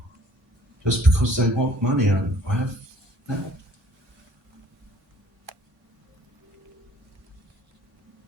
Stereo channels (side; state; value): both; normal; correlation 0.56